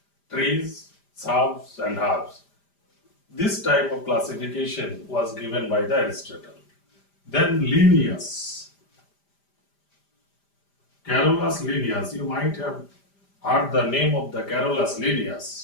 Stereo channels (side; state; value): right; late; 5.0 ms